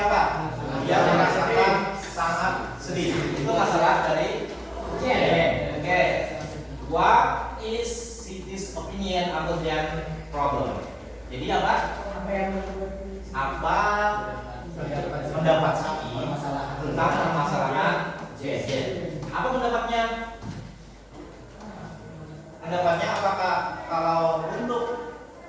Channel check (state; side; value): identical; both; correlation 1.00